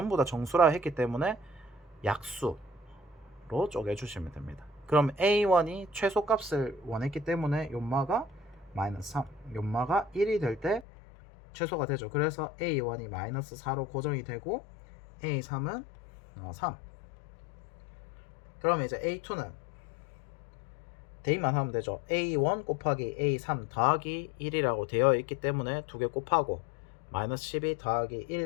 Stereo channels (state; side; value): drops out; right; at 10.9 s